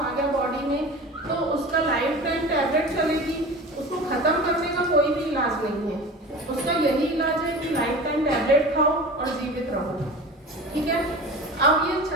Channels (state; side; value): normal; both; correlation 0.35